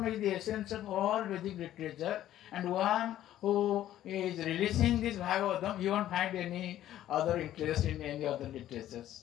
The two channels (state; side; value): quieter; right; 12.7 dB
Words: is the essence of all Vedic literature, and one who is releasing this Bhagavatam, you won't find any other interest in any other